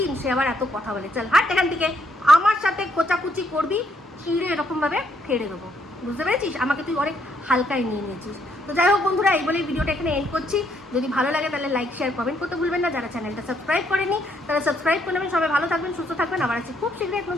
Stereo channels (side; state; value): both; normal; correlation 0.72